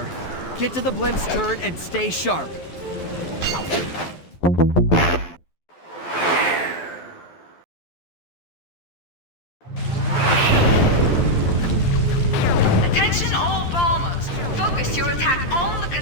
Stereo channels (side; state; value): right; late; 12 ms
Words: Get to the blimp's turret and stay sharp. Attention all bombers. Focus your attack on the